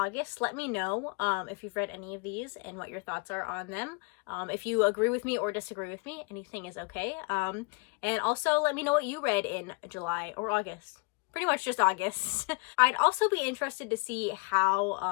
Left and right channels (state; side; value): quieter; right; 30.8 dB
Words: Let me know if you've read any of these and what your thoughts are on them. If you agree with me or disagree with me, anything is okay. And also let me know what you read in July or August. Pretty much just August. I'd also be interested to see